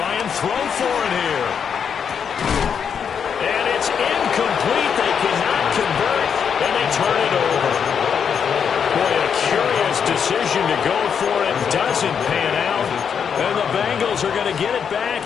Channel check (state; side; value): quieter; right; 7.2 dB